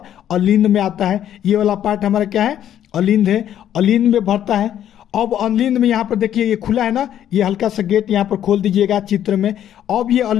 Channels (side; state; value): right; quieter; 10.7 dB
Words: अलिंद में आता है। ये वाला पार्ट हमारा क्या है, अलिंद है, अलिंद में भरता है। अब अलिंद में यहाँ पर देखिए ये खुला है ना, ये हल्का सा गेट यहाँ पर खोल दीजिएगा चित्र में। अब ये